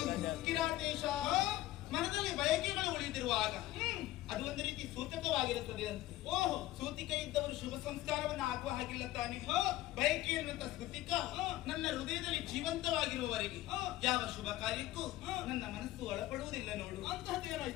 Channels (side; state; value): right; quieter; 16.1 dB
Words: ಕಿರಾತೇಶ, ಮನದಲ್ಲಿ ಬಯಕೆಗಳು ಉಳಿದಿರುವಾಗ ಅದು ಒಂದು ರೀತಿ ಸೂತಕವಾಗಿರುತ್ತದೆ ಅಂತ. ಓಹೋ, ಸೂತಿಕ ಇದ್ದವರು ಶುಭ ಸಂಸ್ಕಾರವನ್ನು ಆಗುವ ಹಾಗಿಲ್ಲ ತಾನೆ. ಬಯಕೆ ಎನ್ನುವಂತ ಸ್ಮೃತಿಕ ನನ್ನ ಹೃದಯದಲ್ಲಿ ಜೀವಂತವಾಗಿರುವವರೆಗೆ ಯಾವ ಶುಭ ಕಾರ್ಯಕ್ಕೂ ನನ್ನ ಮನಸ್ಸು ಒಳಪಡುವುದಿಲ್ಲ ನೋಡು.